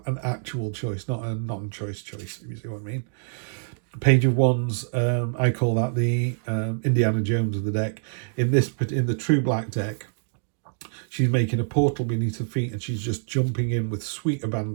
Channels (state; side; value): silent; left; digital silence